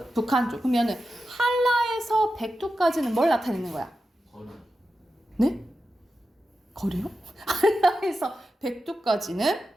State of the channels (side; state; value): both; normal; correlation 0.91